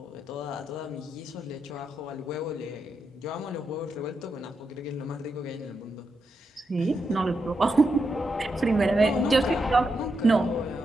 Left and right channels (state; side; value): normal; both; correlation 0.84